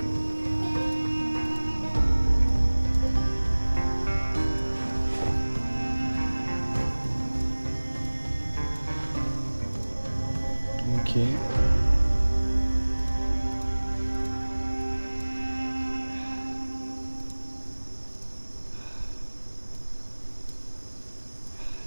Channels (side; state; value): both; inverted; correlation -1.00